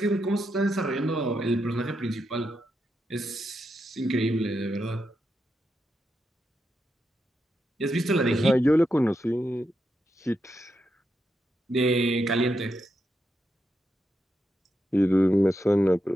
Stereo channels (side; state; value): both; normal; correlation 0.85